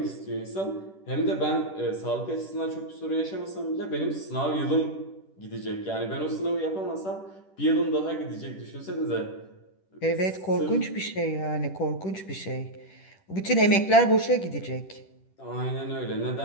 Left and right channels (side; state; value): right; late; 10 ms